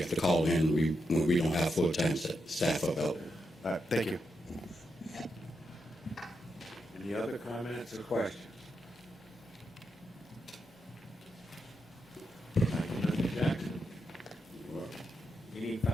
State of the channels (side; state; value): both; normal; correlation 0.84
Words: to call in when we don't have full-time staff available. All right, thank you. Any other comments or questions? Thank you, Mr. Jackson. Any